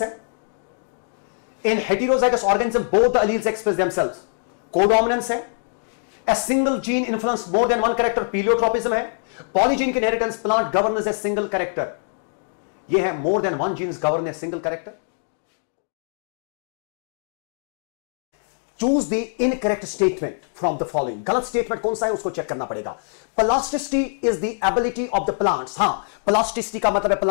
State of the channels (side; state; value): right; silent; digital silence